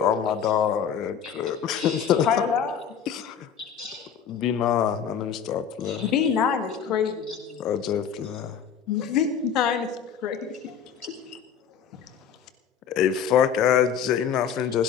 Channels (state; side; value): quieter; right; 7.8 dB